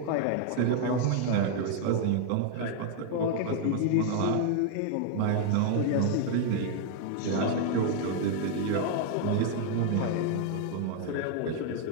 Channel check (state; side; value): different; both; correlation 0.00